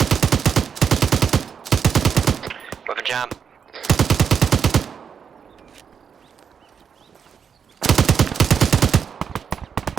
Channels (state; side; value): quieter; left; 7.0 dB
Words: With a jam.